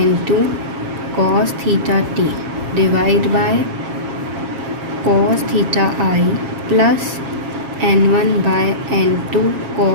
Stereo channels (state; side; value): late; left; 7.4 ms